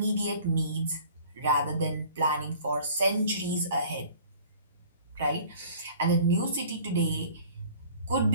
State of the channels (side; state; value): both; inverted; correlation -0.49